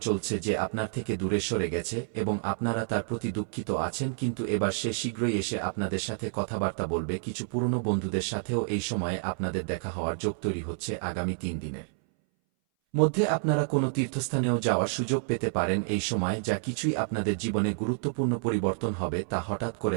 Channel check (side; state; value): left; silent; 59 dB below the other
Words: চলছে যে আপনার থেকে দূরে সরে গেছে এবং আপনারা তার প্রতি দুঃখিত আছেন, কিন্তু এবার সে শীঘ্রই এসে আপনাদের সাথে কথাবার্তা বলবে। কিছু পুরনো বন্ধুদের সাথেও এই সময়ে আপনাদের দেখা হওয়ার যোগ তৈরি হচ্ছে। আগামী 3 দিনের মধ্যে আপনারা কোনো তীর্থস্থানেও যাওয়ার সুযোগ পেতে পারেন এই সময়। যা কিছুই আপনাদের জীবনে গুরুত্বপূর্ণ পরিবর্তন হবে তা হঠাৎ